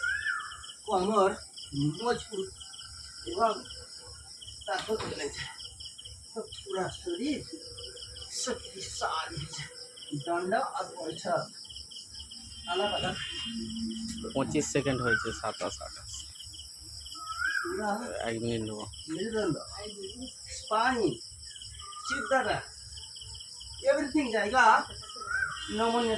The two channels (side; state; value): both; identical; correlation 1.00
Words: कमर मजबूत एवं ताकत मिले जाए तो पूरा शरीर शक्तिशाली हो जाए। डंडा और बैठक अलग अलग 25 সেকেন্ড হয়েছে, 27 28 पूरा 1 মিনিট নেবো। मेरुदंड स्पाइन चित्तरा एवरीथिंग जाएगा नमूने